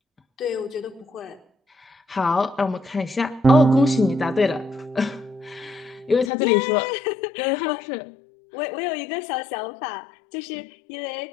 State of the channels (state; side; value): drops out; right; at 6.3 s